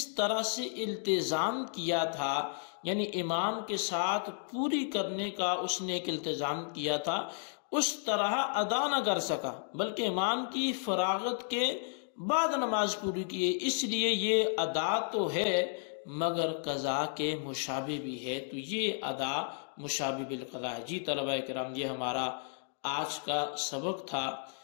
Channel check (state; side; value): silent; right; digital silence